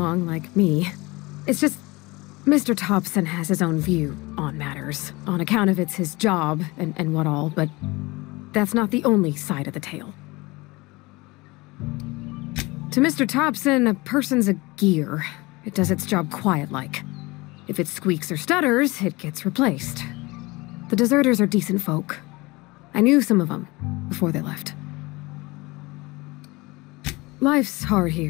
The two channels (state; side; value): quieter; right; 23.2 dB